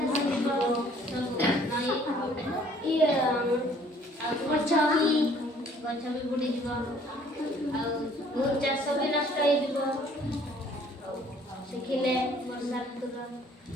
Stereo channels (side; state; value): both; normal; correlation 0.58